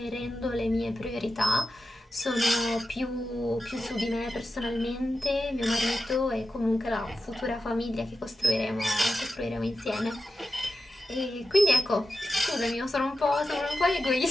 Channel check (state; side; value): normal; both; correlation 0.91